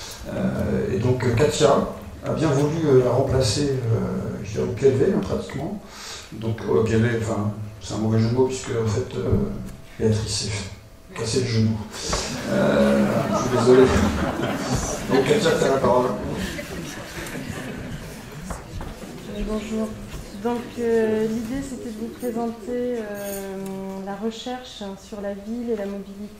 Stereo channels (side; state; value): both; identical; correlation 1.00